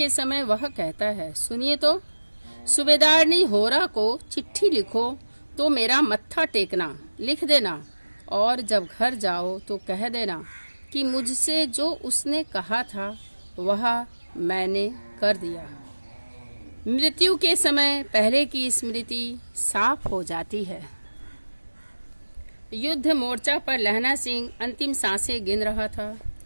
समय वह कहता है, सुनिए तो, सूबेदारनी होरा को चिट्ठी लिखो तो मेरा मत्था टेकना लिख देना, और जब घर जाओ तो कह देना कि मुझसे जो उसने कहा था वह मैंने कर दिया। मृत्यु के समय पहले की स्मृति साफ हो जाती है। युद्ध मोर्चा पर लहना सिंह अंतिम सांसें गिन रहा था।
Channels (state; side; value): inverted; both; correlation -1.00